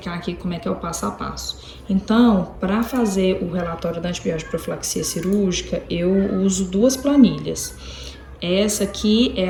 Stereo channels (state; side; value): identical; both; correlation 1.00